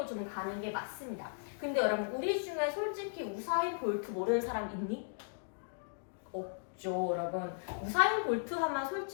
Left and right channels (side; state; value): right; silent; digital silence